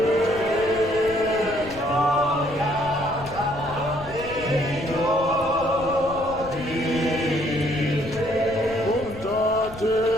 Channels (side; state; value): left; noise; rumble, 15 dB below the sound